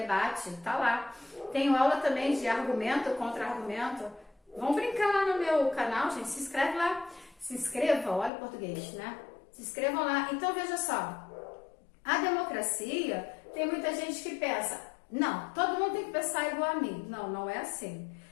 tá lá. Tenho aula também de argumento, contra-argumento. Vamos brincar lá no meu canal, gente, se inscreve lá. Se inscreva, olha o português, né? Se inscrevam lá. Então, veja só, a democracia, tem muita gente que pensa, não, todo mundo tem que pensar igual a mim. Não, não é assim.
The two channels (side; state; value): right; drops out; at 8.3 s